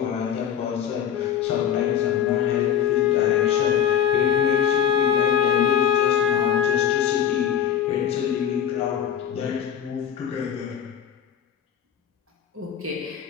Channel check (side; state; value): right; quieter; 9.4 dB